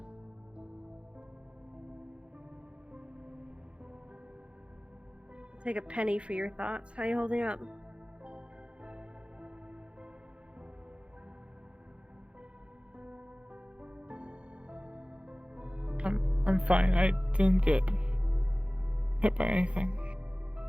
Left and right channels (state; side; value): late; left; 0.059 ms